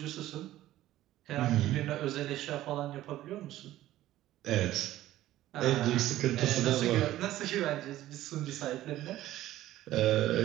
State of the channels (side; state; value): left; quieter; 14.5 dB